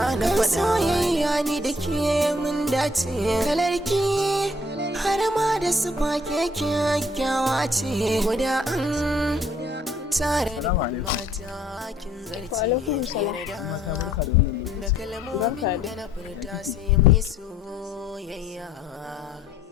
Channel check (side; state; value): both; normal; correlation 0.63